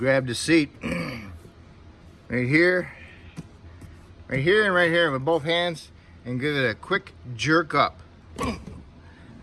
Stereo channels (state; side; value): identical; both; correlation 1.00